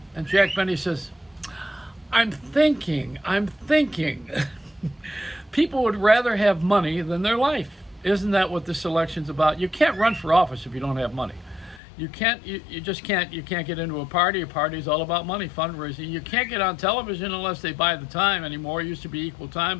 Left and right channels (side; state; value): right; drops out; at 11.8 s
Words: And Jack Benny says, I'm thinking. People would rather have money than their life. Isn't that what this election's about? You can't run for office if you don't have money. You just can't. You can't get into a party. A party is all about money, fundraising. You can't get on television unless they buy the time anymore. It used to be equal time,